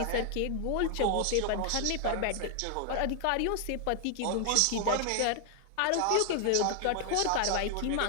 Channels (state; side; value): different; both; correlation 0.00